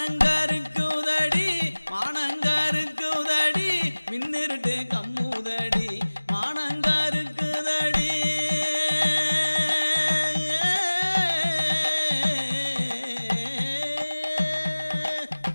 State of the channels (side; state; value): both; inverted; correlation -1.00